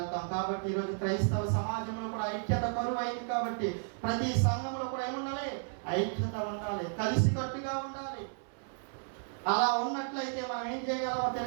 కాబట్టి ఈరోజు క్రైస్తవ సమాజంలో కూడా ఐక్యత కరువైంది. కాబట్టి ప్రతి సంఘంలో కూడా ఏముండాలి? ఐక్యత ఉండాలి, కలిసికట్టుగా ఉండాలి. అలా ఉన్నట్లయితే మనం ఏం చేయగలమో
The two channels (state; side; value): silent; left; 56 dB below the other